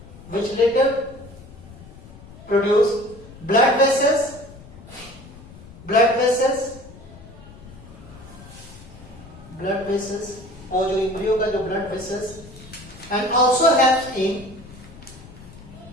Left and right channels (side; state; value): left; noise; rumble, 18 dB below the sound